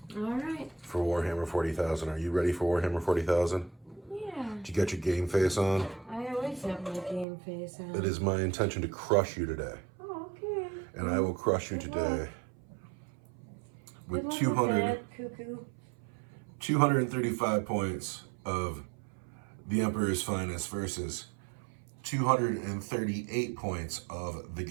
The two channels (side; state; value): left; drops out; at 7.2 s